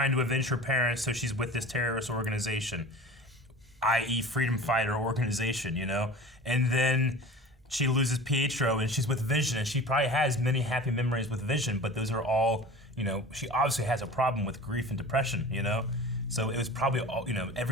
to avenge her parents, so she's with this terrorist organization, i.e. freedom fighter organization, you know, and then she loses Pietro and she's with Vision, and she probably has many happy memories with Vision, but those are all, you know, she obviously has a problem with grief and depression, you know. So it was probably all, you know,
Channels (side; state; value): both; normal; correlation 0.37